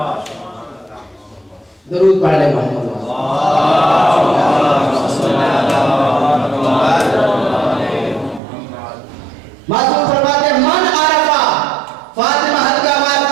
दरूद पढ़ ले मोहम्मद। मासूम फरमाते मन आरफा फातिमा हल्का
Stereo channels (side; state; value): left; drops out; at 8.4 s